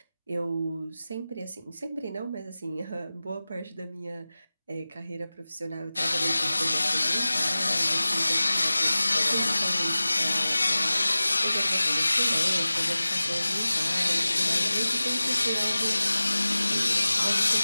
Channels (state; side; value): inverted; both; correlation -0.97